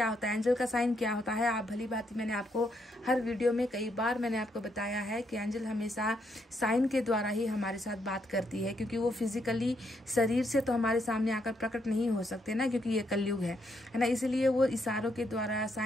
होता है एंजल का साइन, क्या होता है। आप भली बात, मैंने आपको हर वीडियो में कई बार मैंने आपको बताया है कि एंजल हमेशा साइन के द्वारा ही हमारे साथ बात करती है, क्योंकि वो फिजिकली शरीर से तो हमारे सामने आकर प्रकट नहीं हो सकते ना, क्योंकि ये कलयुग है ना। इसलिए वो इशारों के द्वारा,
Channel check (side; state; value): both; normal; correlation 0.76